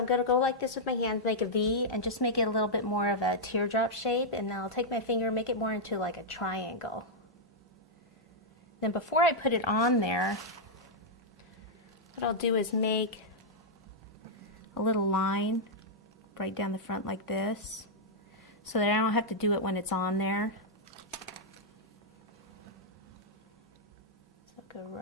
going to go like this with my hands, make a V, and just make it a little bit more of a teardrop shape. And then I'll take my finger and make it more into like a triangle. Then before I put it on there, what I'll do is make a little line right down the front like this, so that I don't have to do it when it's on there. So go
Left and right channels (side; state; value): both; normal; correlation -0.06